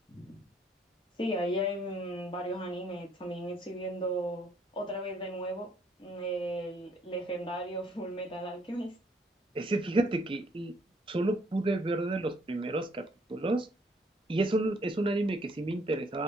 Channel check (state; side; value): normal; both; correlation 0.66